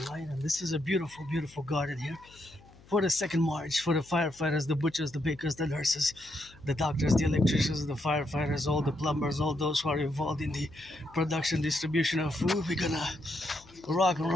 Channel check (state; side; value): noise; left; hum, 25 dB below the sound